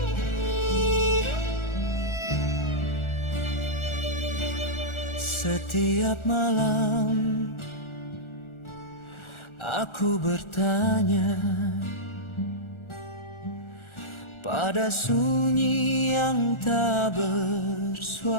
Setiap malam aku bertanya pada sunyi yang tak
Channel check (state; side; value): late; right; 1.4 ms